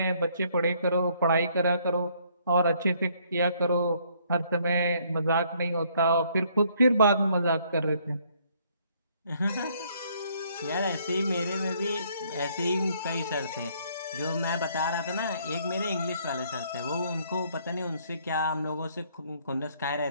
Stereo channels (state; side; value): inverted; both; correlation -0.66